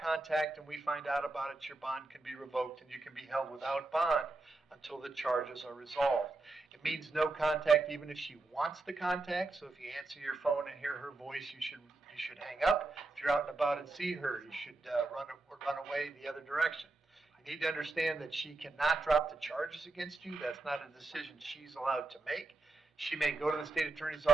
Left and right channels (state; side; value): quieter; left; 3.1 dB